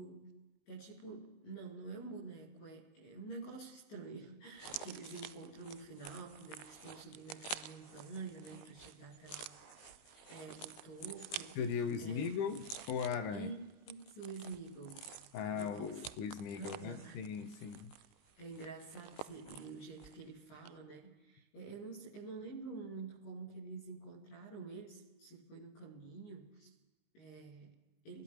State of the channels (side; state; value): right; late; 19 ms